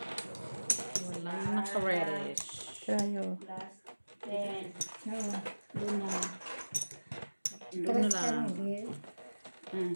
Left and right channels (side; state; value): both; inverted; correlation -1.00